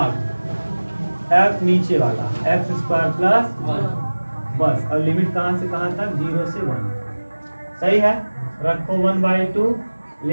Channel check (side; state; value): both; inverted; correlation -1.00